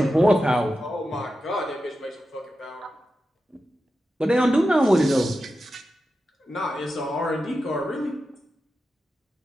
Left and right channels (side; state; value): both; normal; correlation 0.91